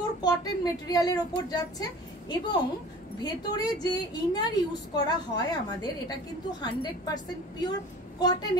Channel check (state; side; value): normal; both; correlation 0.43